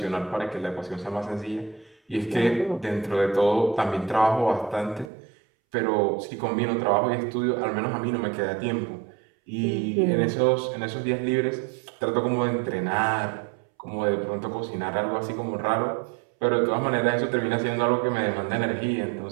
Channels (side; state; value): left; drops out; at 5.1 s